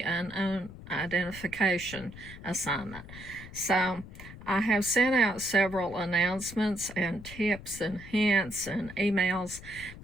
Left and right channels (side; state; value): left; noise; rumble, 15 dB below the sound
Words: unknown identification assignment. So I have sent out several announcements and tips and hints and emails,